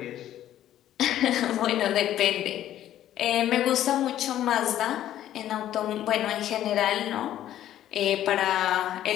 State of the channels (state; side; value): quieter; right; 12.2 dB